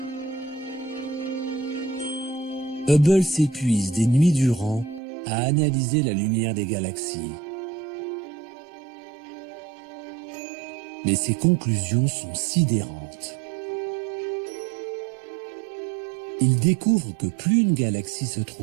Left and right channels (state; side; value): drops out; left; at 5.0 s